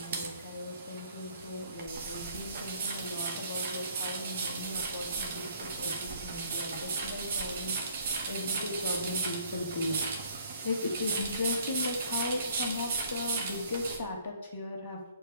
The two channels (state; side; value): inverted; both; correlation -0.58